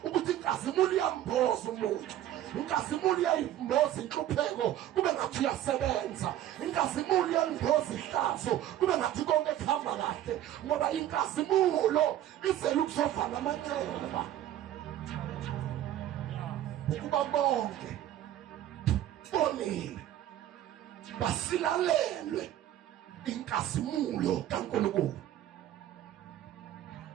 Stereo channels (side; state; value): left; quieter; 12.3 dB